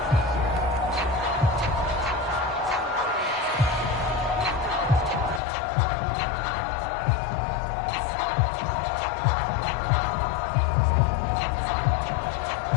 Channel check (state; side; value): drops out; right; at 5.4 s